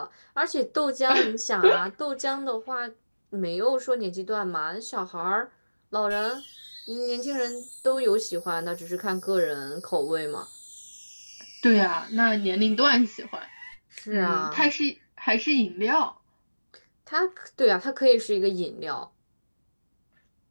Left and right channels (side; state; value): both; inverted; correlation -1.00